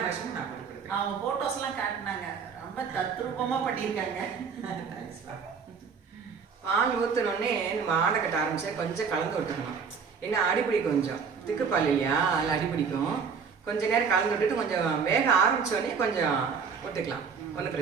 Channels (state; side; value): quieter; left; 6.0 dB